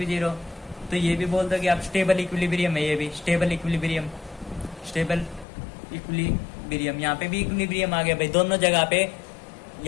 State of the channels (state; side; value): drops out; right; at 5.5 s